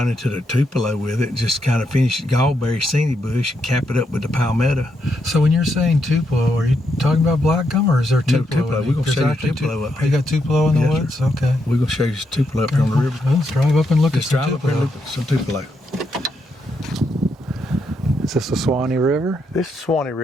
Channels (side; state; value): both; normal; correlation 0.80